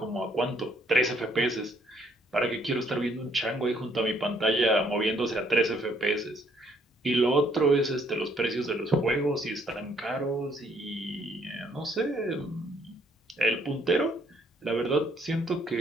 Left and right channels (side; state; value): both; normal; correlation 0.66